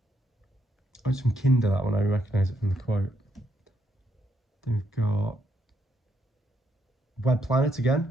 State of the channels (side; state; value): both; normal; correlation 0.76